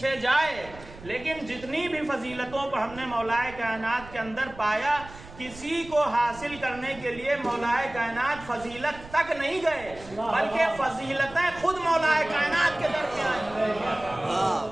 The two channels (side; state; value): right; noise; rumble, 17 dB below the sound